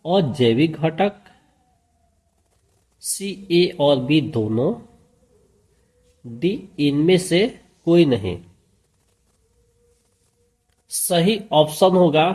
अजैविक घटक, सी ए और बी दोनों, डी इनमें से कोई नहीं। सही ऑप्शन होगा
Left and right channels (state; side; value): identical; both; correlation 1.00